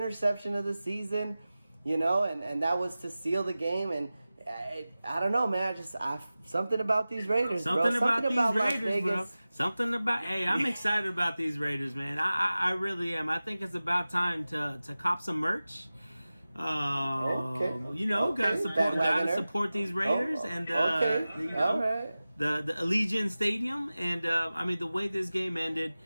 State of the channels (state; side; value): inverted; both; correlation -0.96